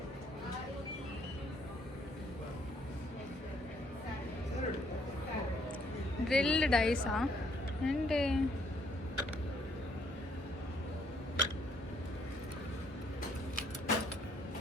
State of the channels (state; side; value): normal; both; correlation 0.67